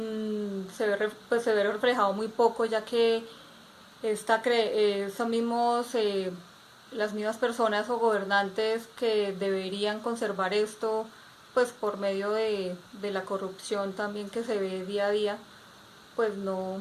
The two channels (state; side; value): identical; both; correlation 1.00